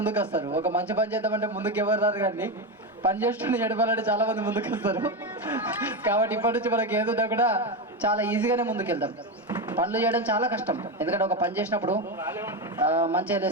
వస్తారు. ఒక మంచి పని చేద్దామంటే ముందుకు ఎవరు రారు, కానీ పని చేస్తుంటే ఎడపాలంటే చాలామంది ముందుకు వస్తారు. కాబట్టి ఇప్పటి నుంచి మనకి ఏదున్నా కూడా చాలా ఈజీగానే ముందుకెళ్తాం. పనులు చేయడం చాలా కష్టం, ఎందుకంటే ఒక పని చేసినప్పుడు మంచిగా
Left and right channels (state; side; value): normal; both; correlation 0.14